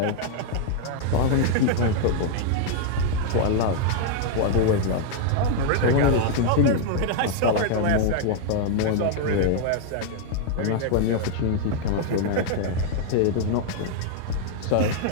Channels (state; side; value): different; both; correlation 0.00